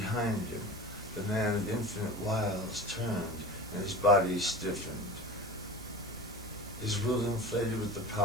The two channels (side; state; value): right; noise; hiss, 17 dB below the sound